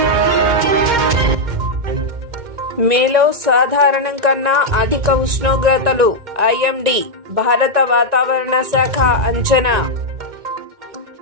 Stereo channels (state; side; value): late; left; 1.9 ms